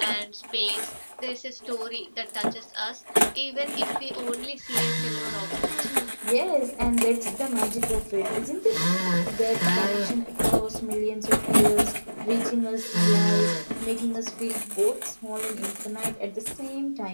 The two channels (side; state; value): both; inverted; correlation -1.00